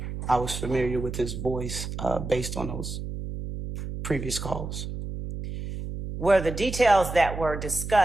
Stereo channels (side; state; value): right; noise; hum, 6 dB below the sound